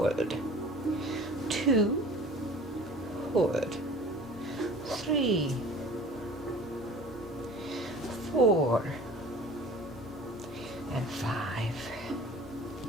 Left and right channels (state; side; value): normal; both; correlation 0.44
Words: 2, hold. 3, 4, and 5.